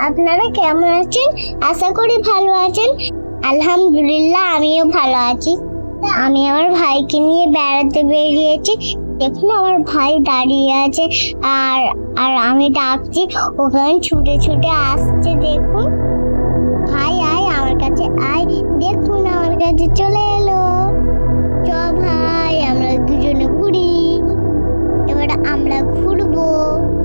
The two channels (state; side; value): inverted; both; correlation -1.00